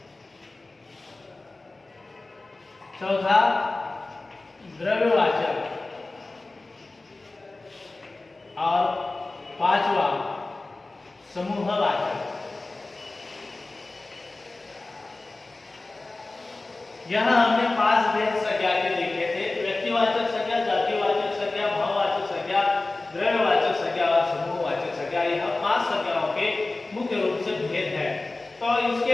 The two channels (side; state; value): right; quieter; 3.2 dB